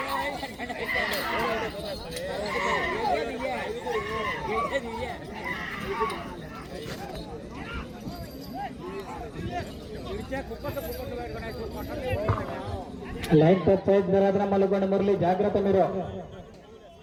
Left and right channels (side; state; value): both; identical; correlation 1.00